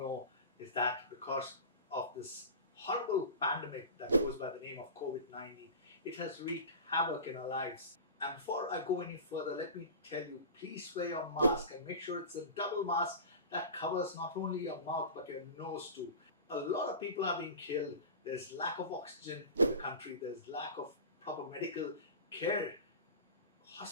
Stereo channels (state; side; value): inverted; both; correlation -0.32